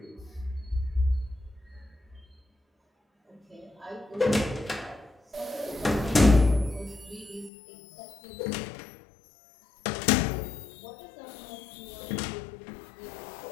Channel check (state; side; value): drops out; right; at 7.5 s